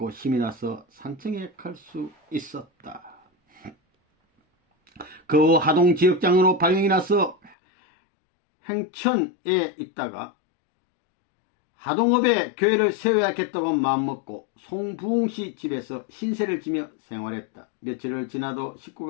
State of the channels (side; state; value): right; drops out; at 7.6 s